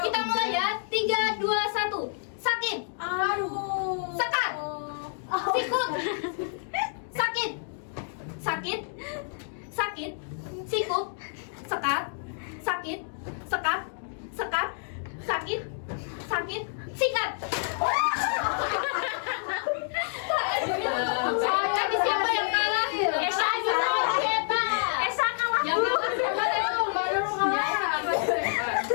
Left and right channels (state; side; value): silent; right; digital silence